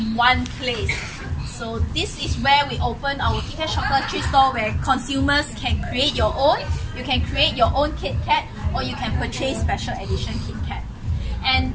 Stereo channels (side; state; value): both; identical; correlation 1.00